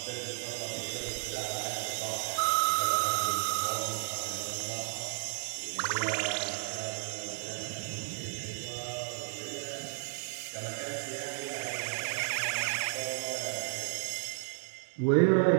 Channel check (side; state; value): left; silent; digital silence